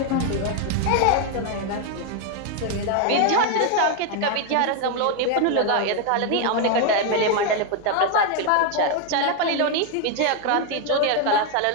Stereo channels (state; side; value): different; both; correlation 0.01